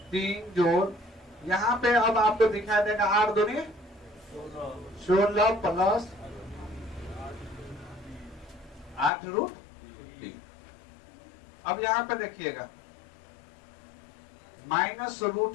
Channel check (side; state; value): right; drops out; at 9.1 s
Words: 3 जोड़, यहां पे अब आपको दिखाई देगा 8 दूनी 16 + 8 √3। अब यहां पे देखिएगा